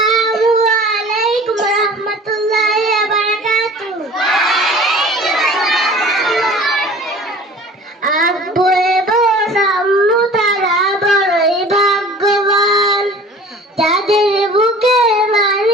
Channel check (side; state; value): both; normal; correlation 0.44